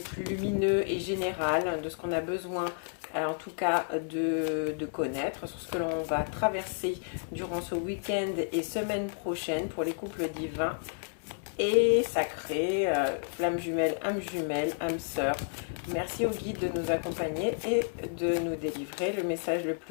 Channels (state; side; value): silent; right; digital silence